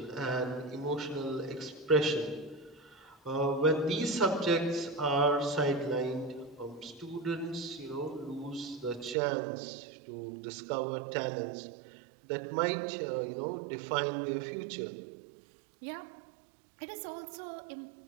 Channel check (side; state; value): left; drops out; at 9.2 s